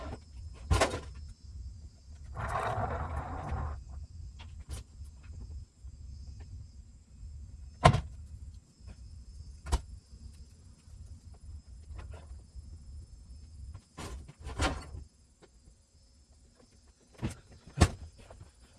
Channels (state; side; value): identical; both; correlation 1.00